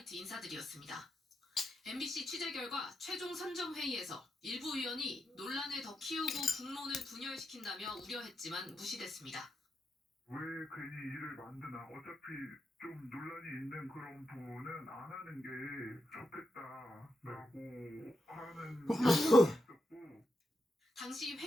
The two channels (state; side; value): normal; both; correlation 0.84